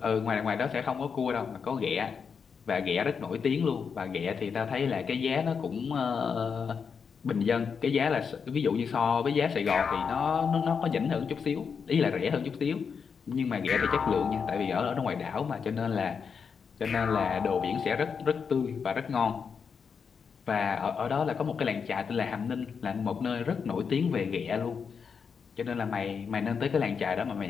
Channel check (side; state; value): right; quieter; 6.2 dB